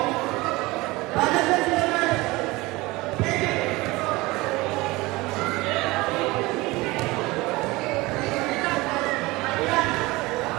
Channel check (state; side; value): quieter; left; 21.6 dB